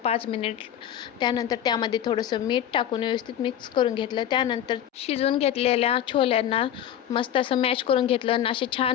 5 मिनिट. त्यानंतर त्यामध्ये थोडंसं मीठ टाकून व्यवस्थित मिक्स करून घेतलं. त्यानंतर शिजवून घेतलेल्या छोल्यांना मस्त असं मॅश करून घेतलं आणि असे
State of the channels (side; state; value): right; quieter; 10.5 dB